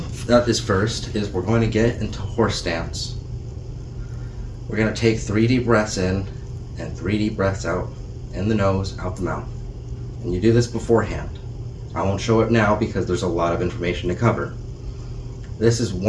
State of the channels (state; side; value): identical; both; correlation 1.00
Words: that is first is we're going to get into horse stance. We're going to take 3 deep breaths in and 3 deep breaths out, in the nose, out the mouth. And you do this beforehand. I won't show it now because there's a lot of information to cover. This is